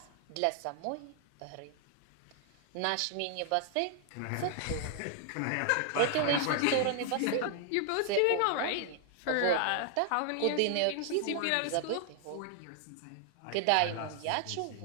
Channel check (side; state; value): both; different; correlation 0.00